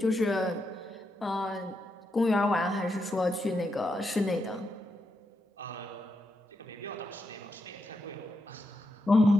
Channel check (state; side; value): normal; both; correlation 0.84